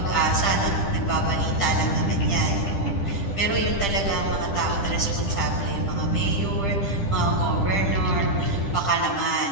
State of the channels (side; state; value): right; late; 10 ms